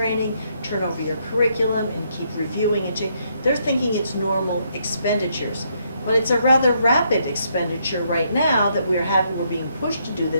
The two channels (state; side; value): inverted; both; correlation -0.73